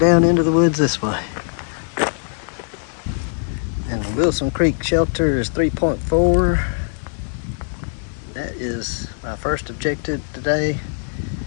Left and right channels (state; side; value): silent; right; digital silence